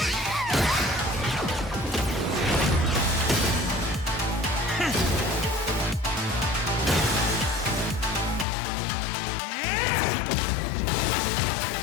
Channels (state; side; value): drops out; right; at 8.5 s